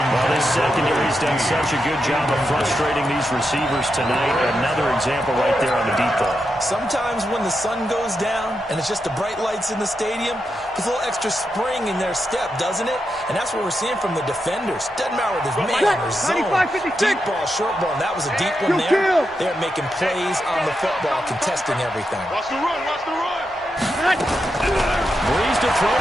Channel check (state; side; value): normal; both; correlation 0.86